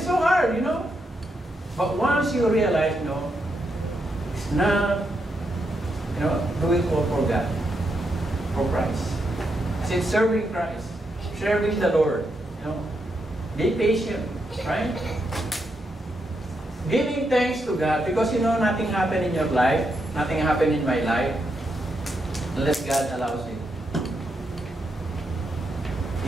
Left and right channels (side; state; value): both; normal; correlation 0.82